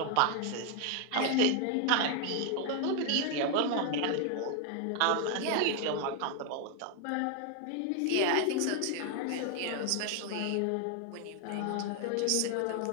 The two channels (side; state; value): both; different; correlation 0.00